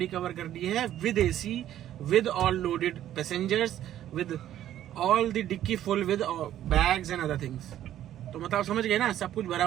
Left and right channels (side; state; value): left; quieter; 11.9 dB